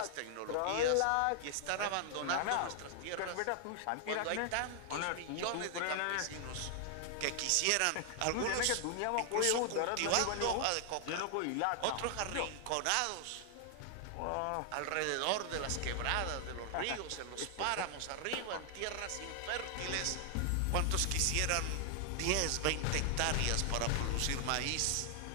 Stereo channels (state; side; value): different; both; correlation 0.00